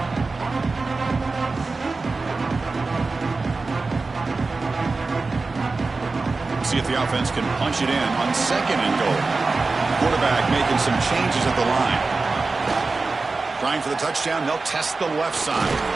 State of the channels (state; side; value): quieter; left; 3.8 dB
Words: See if the offense can punch it in on second and goal. Quarterback making some changes at the line. Trying for the touchdown, they'll test the left side.